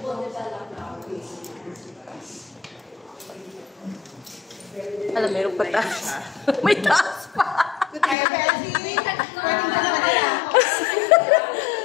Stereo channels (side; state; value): right; drops out; at 8.2 s